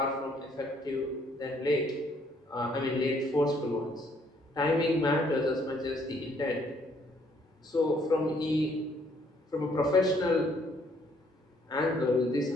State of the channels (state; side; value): normal; both; correlation 0.66